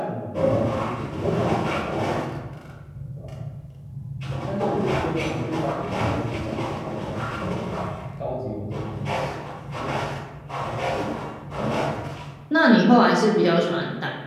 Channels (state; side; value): identical; both; correlation 1.00